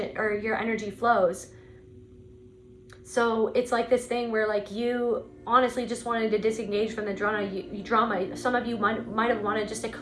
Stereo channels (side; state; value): both; identical; correlation 1.00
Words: or your energy flows. So it's like this thing where like you honestly just wanted to disengage from the drama. Some of you might have wanted just a